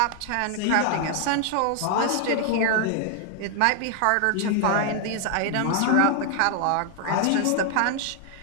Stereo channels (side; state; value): both; different; correlation 0.00